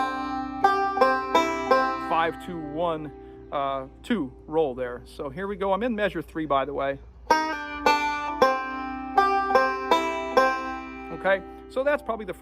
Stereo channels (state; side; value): identical; both; correlation 1.00